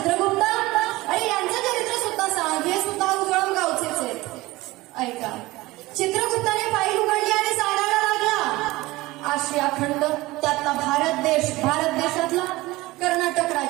अरे यांचं चरित्र सुद्धा सांग, हे सुद्धा उजळण गावचेच आहेत. ऐका, चित्रगुप्ताने फाईल उघडली आणि सांगायला लागला, आशिया खंड, त्यातला भारत देश, भारत देशातला कर्नाटक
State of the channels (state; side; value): quieter; left; 19.8 dB